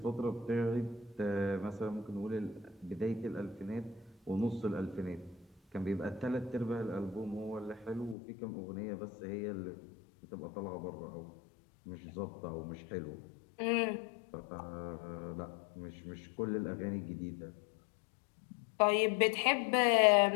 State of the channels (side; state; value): right; drops out; at 8.2 s